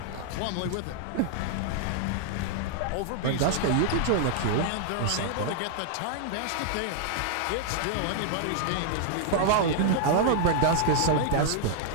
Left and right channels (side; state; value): both; different; correlation -0.01